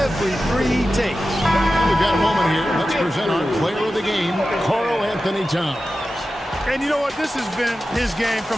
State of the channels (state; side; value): normal; both; correlation 0.93